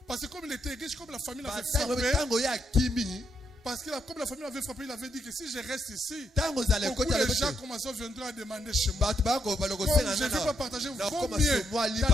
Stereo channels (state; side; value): normal; both; correlation 0.78